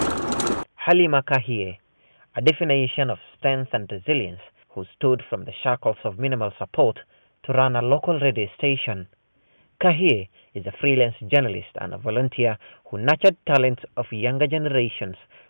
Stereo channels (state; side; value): inverted; both; correlation -1.00